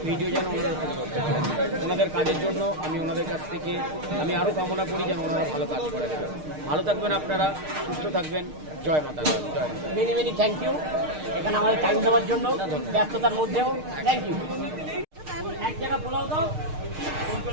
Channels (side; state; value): left; late; 6.5 ms